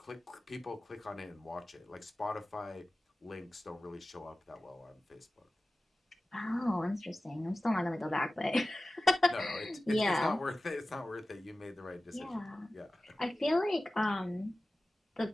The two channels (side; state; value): both; normal; correlation 0.96